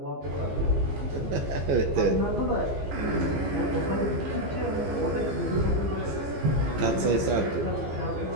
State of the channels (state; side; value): late; left; 15 ms